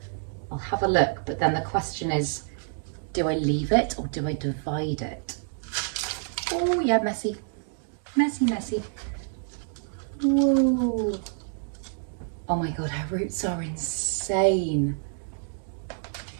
I'll have a look, but then the question is, do I leave it or do I divide it? Oh yeah, messy, messy, messy. Whoa. Oh my God, her roots are insane.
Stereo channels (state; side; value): silent; left; digital silence